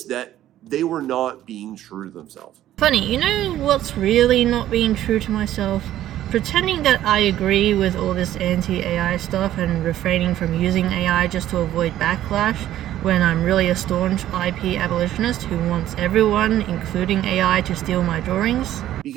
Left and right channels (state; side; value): quieter; left; 12.8 dB